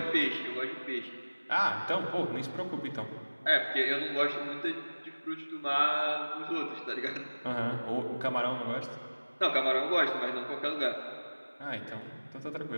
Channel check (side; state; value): both; inverted; correlation -1.00